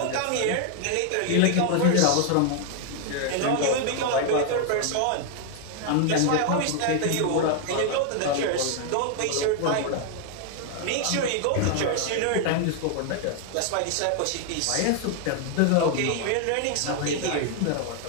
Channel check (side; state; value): both; different; correlation 0.00